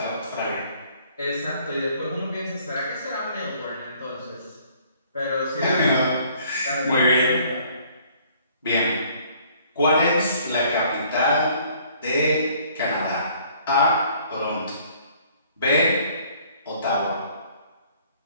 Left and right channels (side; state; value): both; inverted; correlation -0.59